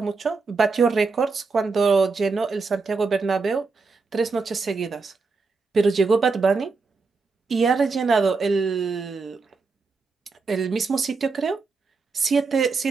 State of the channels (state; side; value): quieter; left; 4.3 dB